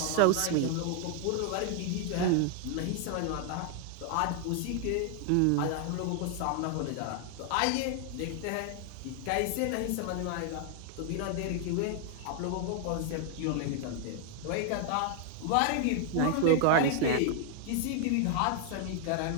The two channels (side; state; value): both; different; correlation 0.00